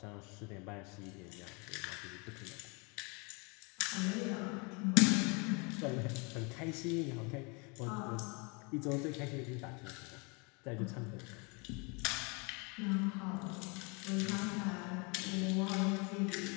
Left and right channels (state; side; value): quieter; right; 31.4 dB